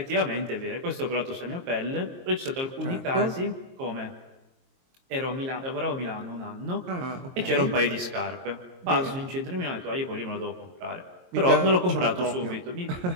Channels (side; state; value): left; late; 22 ms